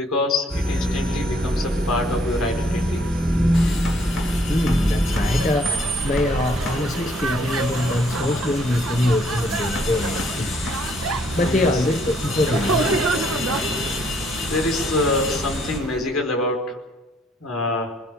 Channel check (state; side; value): normal; both; correlation 0.66